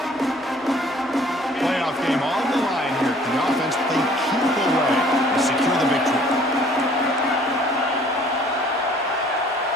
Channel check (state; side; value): normal; both; correlation 0.55